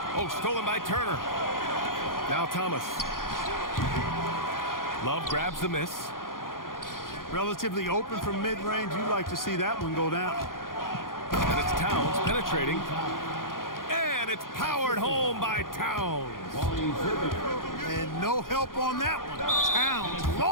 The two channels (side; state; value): right; late; 0.90 ms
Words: Oh, stolen by Turner. Now Thomas. Love grabs the miss. Relatively open from mid-range. You'd like to see that one go down. And it's Towns penetrating. And it's powered home by Towns. And no help on that one. Towns,